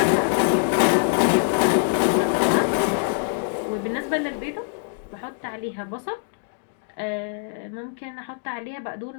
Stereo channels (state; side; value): silent; right; digital silence